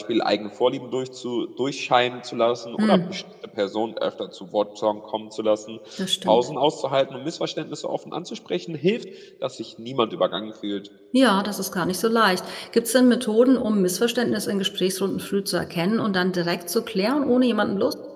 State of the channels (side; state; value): both; identical; correlation 1.00